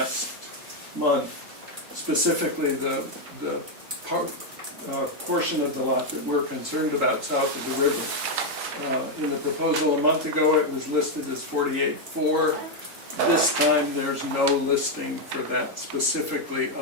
month, specifically the portion of the lot that we're concerned about south of the river. In the proposal a month ago, it was listed as 48.4. This time, there's no listing for that specifically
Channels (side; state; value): left; late; 3.8 ms